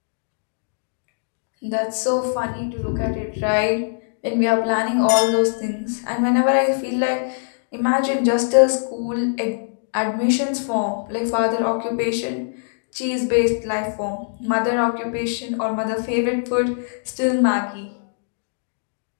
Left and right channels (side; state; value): right; silent; digital silence